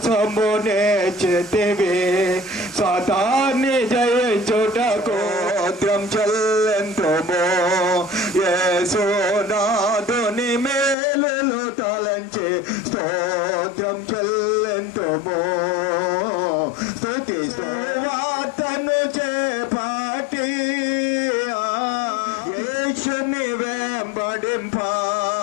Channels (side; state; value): right; drops out; at 11.0 s